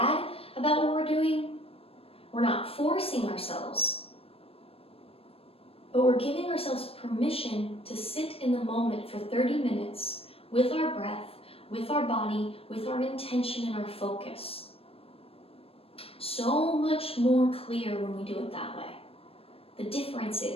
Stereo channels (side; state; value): right; late; 0.28 ms